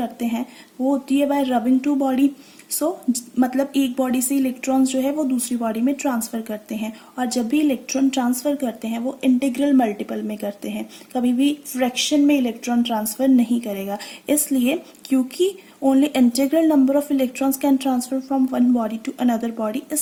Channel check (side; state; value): both; identical; correlation 1.00